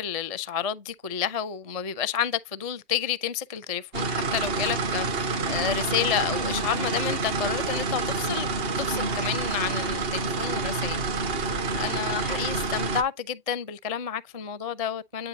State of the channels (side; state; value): left; late; 1.7 ms